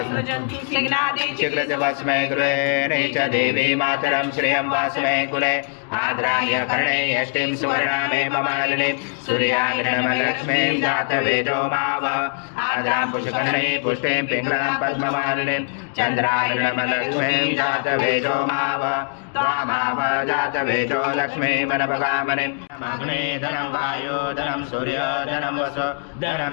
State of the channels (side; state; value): right; silent; 64 dB below the other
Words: चिक्रज भस्मे गृहे च देवी मातरं श्रियं भस्मे कुले आद्राय कर्णे यष्टिं सुवर्णामेव मालिनीं सूर्याग्निर्मलक्ष्मीं जातवेदो माव आद्रां पुष्कर्णे पुष्टिं पिङ्गलां पद्ममालिनीं चन्द्राग्निर्मलक्ष्मीं जातवेदो माव त्वामाव जातवेदो लक्ष्मीमनपगामनिम् अग्ने धनं वायो धनं सूर्य धनं वसु